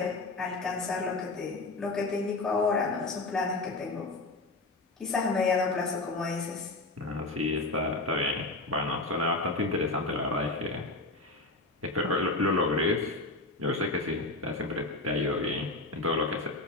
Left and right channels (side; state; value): right; quieter; 3.1 dB